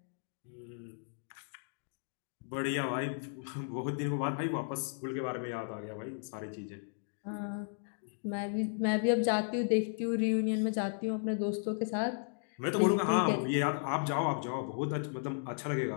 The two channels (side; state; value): right; silent; digital silence